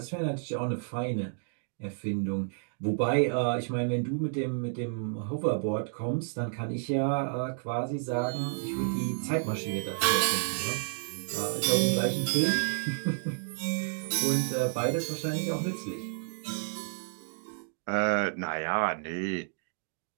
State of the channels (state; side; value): silent; left; digital silence